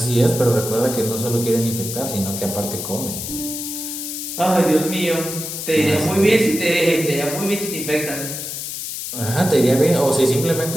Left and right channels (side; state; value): left; noise; hiss, 6 dB below the sound